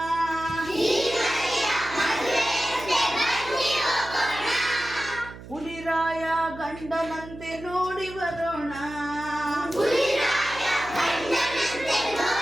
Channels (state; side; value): noise; right; hum, 15 dB below the sound